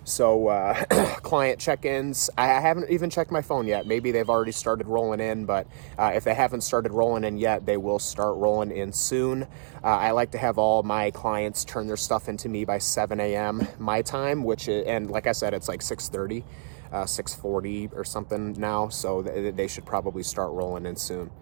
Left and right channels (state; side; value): silent; left; digital silence